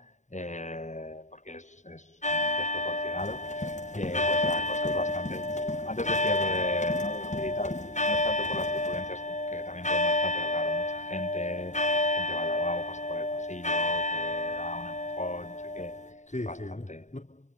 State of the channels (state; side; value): late; right; 0.35 ms